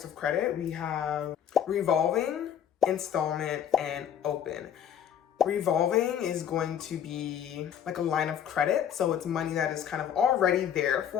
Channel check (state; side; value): quieter; right; 9.2 dB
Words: of credit. We have revolving, installment, and open. Revolving is going to be like a line of credit. So it's money that is kind of already there